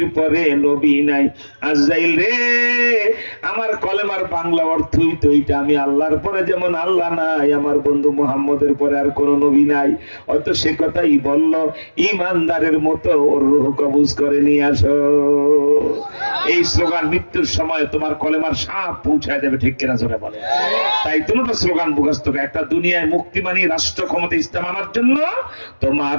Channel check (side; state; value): both; inverted; correlation -1.00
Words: পরে নবী নাই। আজরাইল রে, আমার কলেমার বাংলা অর্থই তো এইটা, আমি আল্লাহর পরে যেমন আল্লাহ নাই, আমার বন্ধু মুহাম্মদের পরে আর কোনো নবী নাই। হয়তো সে কথাই বলল, ইমানদারের মতো ওর রূহ কবজ করে নিয়ে আসো। এই স্লোগান মৃত্যুর সময় তোমার কলেমার সাপ পৌঁছায় দেবে, ঠিক কিনা জোরে বলে। তাই দুটো স্লোগান মুখস্থ করে, একটা দুনিয়ায় মুক্তি মানি রাষ্ট্র ক্ষমতা ইসলাম আনার জন্য, তোমার